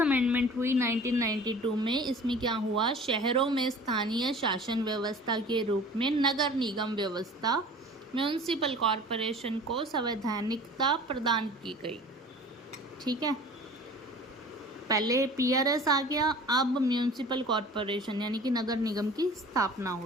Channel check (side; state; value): both; normal; correlation 0.44